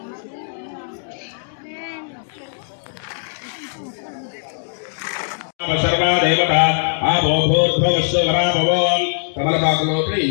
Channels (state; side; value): silent; right; digital silence